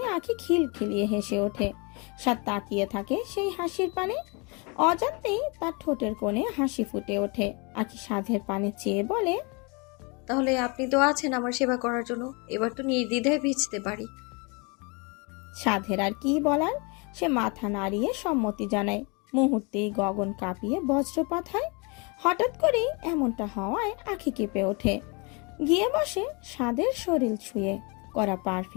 আখি খিলখিলিয়ে হেসে ওঠে। সাদ তাকিয়ে থাকে সেই হাসির পানে। অজান্তেই তার ঠোঁটের কোণে হাসি ফুটে ওঠে। আখি সাধের পানে চেয়ে বলে, তাহলে আপনি তো আছেন আমার সেবা করার জন্য, এবার তো নির্দ্বিধায় ভিজতে পারি। সাধের আর কি বলার, সে মাথা নাড়িয়ে সম্মতি জানায়। মুহূর্তেই গগন কাঁপিয়ে বজ্রপাত হয়। হঠাৎ করেই এমনটা হওয়ায় আখি কেঁপে ওঠে। গিয়ে বসে সাধের শরীর ছুঁয়ে। করা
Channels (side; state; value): right; quieter; 30.8 dB